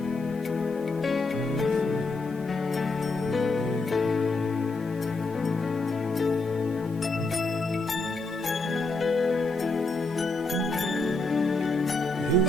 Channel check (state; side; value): quieter; right; 3.1 dB